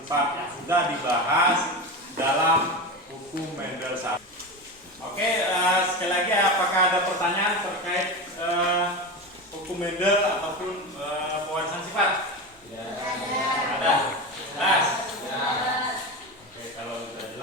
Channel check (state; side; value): normal; both; correlation 0.22